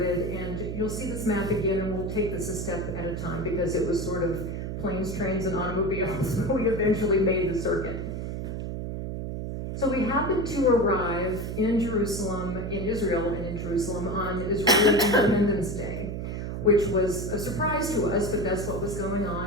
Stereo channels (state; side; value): noise; right; hum, 5 dB below the sound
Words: and you'll see this map again, and we'll take this a step at a time because it was sort of planes, trains, and automobiles, but we eventually made the circuit. So we happened to arrive in Jerusalem, in Israel and in Jerusalem on Israeli Independence Day, which was a surprise to us, but that's what was going